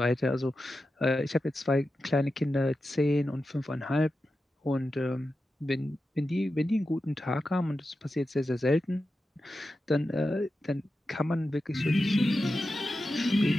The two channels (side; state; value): both; normal; correlation 0.91